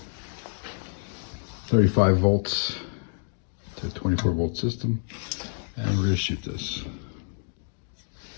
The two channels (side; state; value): right; silent; 60 dB below the other